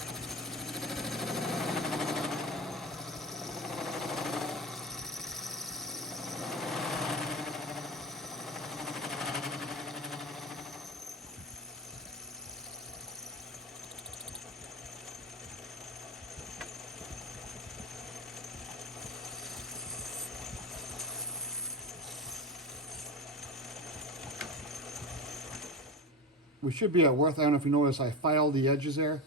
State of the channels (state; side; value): normal; both; correlation 0.24